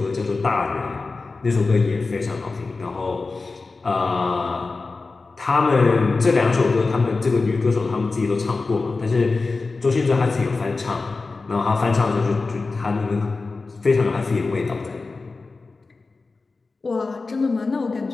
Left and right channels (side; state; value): right; quieter; 3.9 dB